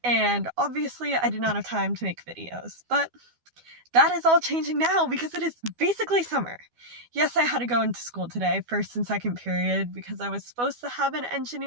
And obviously I did not have time to make videos, but that is all changing now because it is basically summer. Yes, I had to go into school today, first and second period, because I was supposed to have an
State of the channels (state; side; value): late; left; 12 ms